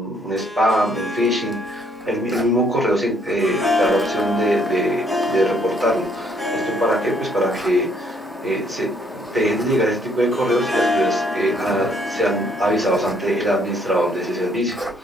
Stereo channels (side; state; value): both; normal; correlation 0.67